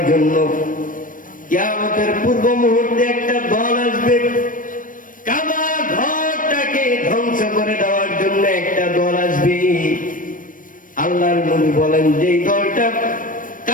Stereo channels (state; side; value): late; right; 0.39 ms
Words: জন্য কিয়ামতের পূর্ব মুহূর্তে একটা দল আসবে। কাবা ঘরটাকে ধ্বংস করে দেওয়ার জন্য একটা দল আসবে। আল্লাহর নবী বলেন যেই দলটা